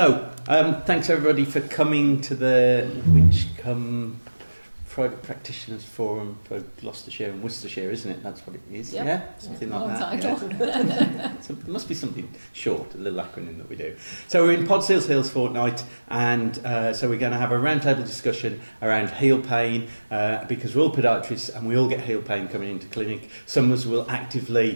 thanks everybody for coming to the Winchcombe Private Practitioners Forum for Gloucestershire and Worcestershire, isn't it? That's what it is, yep. Yeah? Something like that. Yeah. So it must be something short, a little acronym that we do. So we're in Pod Seals Hills fortnight, and so we're going to have a roundtable discussion around heel pain, because we're all podiatrists and we all get heel pain coming into clinic. Some of us will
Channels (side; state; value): both; inverted; correlation -1.00